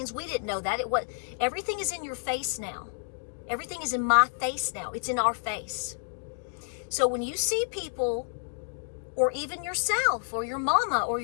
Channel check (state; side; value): silent; right; digital silence